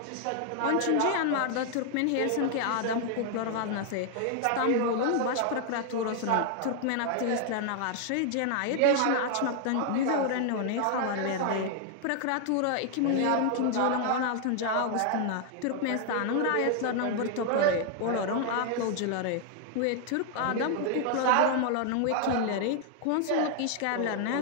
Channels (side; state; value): both; different; correlation 0.00